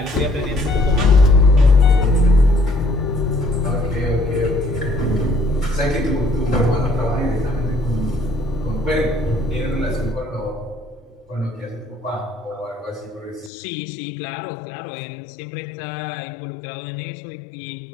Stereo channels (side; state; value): right; drops out; at 13.5 s